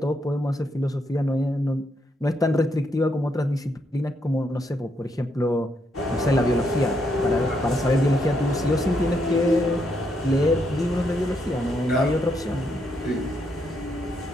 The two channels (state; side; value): normal; both; correlation 0.77